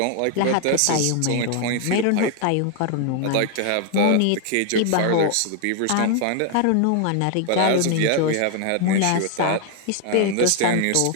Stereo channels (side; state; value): both; different; correlation 0.00